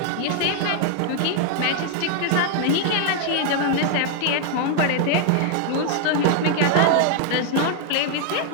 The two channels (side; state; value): both; different; correlation 0.00